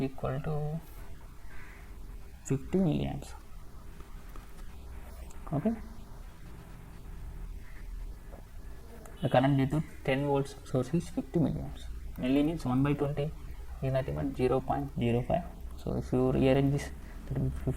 to 50 milliamps. Okay, the current due to 10 volts source is 50 milliamps. Milli means 1 by 20 is nothing but 0.05. So if you rearrange this, that will be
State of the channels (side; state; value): both; identical; correlation 1.00